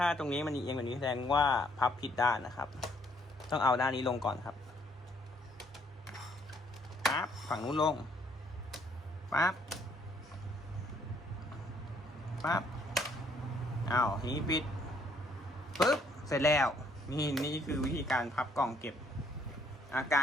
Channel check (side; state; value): both; normal; correlation 0.66